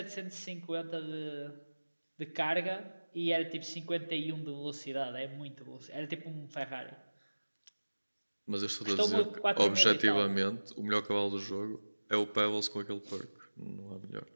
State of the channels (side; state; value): both; inverted; correlation -1.00